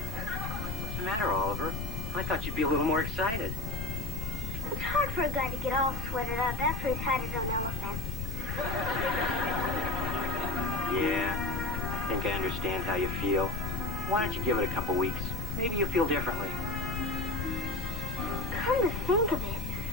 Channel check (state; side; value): noise; left; rumble, 4 dB below the sound